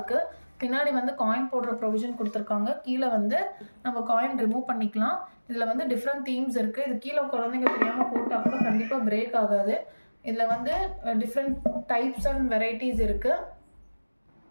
பின்னாடி வந்து காயின் போடுற ப்ரொவிஷன் கொடுத்துருக்காங்க. கீழே வந்து நம்ம காயின் ரிமூவ் பண்ணிக்கலாம். இதில் வந்து டிஃப்ரெண்ட் தீம்ஸ் இருக்குது. இது கீழே குழந்தைங்க தெரியாமல் போட்டால் கூட கண்டிப்பாக பிரேக் ஆகாது. இதில் வந்து டிஃப்ரெண்ட் டைப்ஸ் அண்ட் வெரைட்டிஸ் இருக்குது.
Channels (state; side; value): inverted; both; correlation -1.00